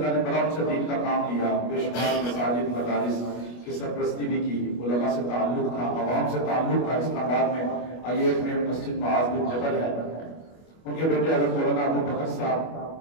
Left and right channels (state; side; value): late; right; 25 ms